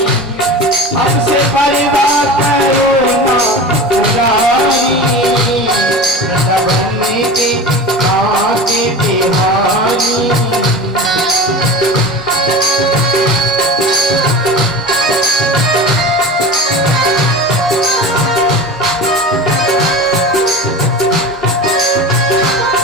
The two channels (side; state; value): right; noise; hum, 28 dB below the sound